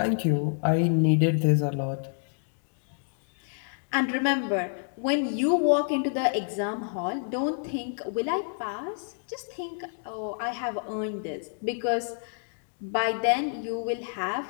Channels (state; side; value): silent; right; digital silence